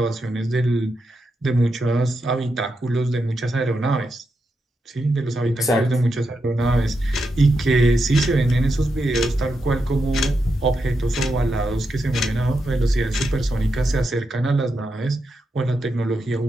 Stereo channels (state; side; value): normal; both; correlation 0.85